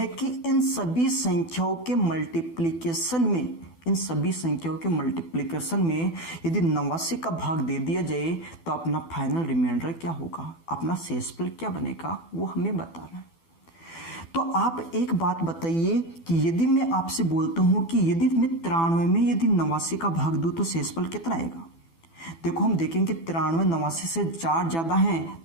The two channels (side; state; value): right; late; 12 ms